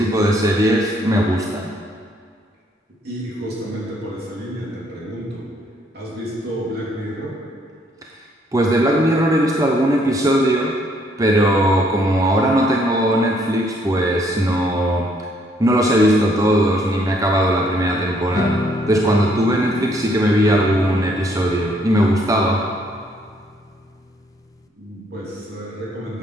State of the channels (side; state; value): both; normal; correlation 0.67